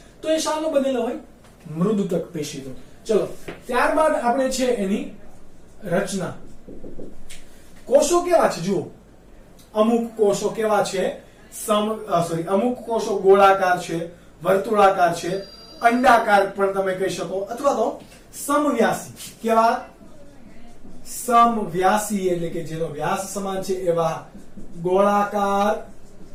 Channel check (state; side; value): identical; both; correlation 1.00